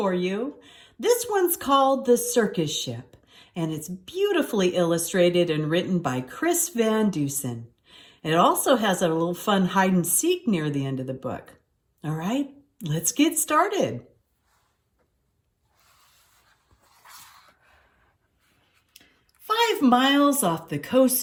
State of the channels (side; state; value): both; identical; correlation 1.00